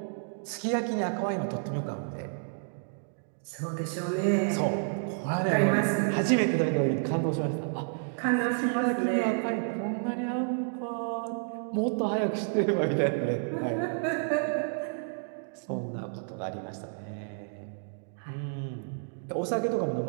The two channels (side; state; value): left; silent; digital silence